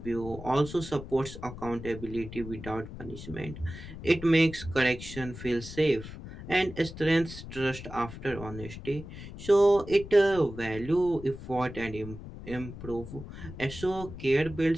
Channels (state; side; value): noise; left; rumble, 12 dB below the sound